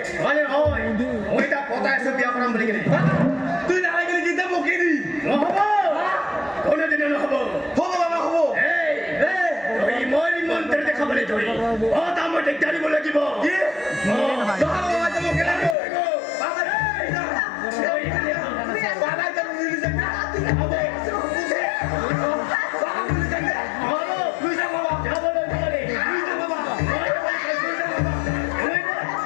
মানে হয় মই তাক পতাই আছো বিয়া কৰাম বুলি কিনে তুই নালাগে গেলি কিতা বকি দি নহ'ব কোনোদিনে নহ'ব হ'ব বাবা হ'ব এই তই মই মন্ত্ৰী দেখাবলৈ ধৰি তাৰ মই দিগদাৰ দিব লাগিব কি বাবা বাবা তো বকি লাগি বাবা এই বাবা তো মিলি যায় না হ'ব বাবা মিলি যায় না হ'ব তুই যা বাবা যাবলৈ নোৱাৰি তুই যা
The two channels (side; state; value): right; drops out; at 15.8 s